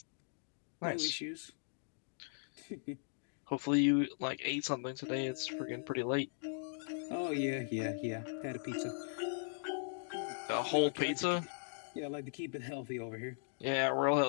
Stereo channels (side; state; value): right; silent; digital silence